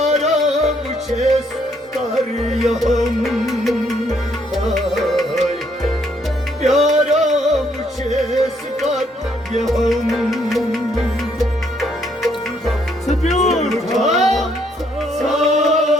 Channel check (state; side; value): normal; both; correlation 0.70